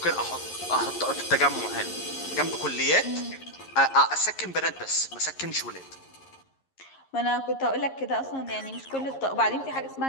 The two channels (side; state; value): right; late; 11 ms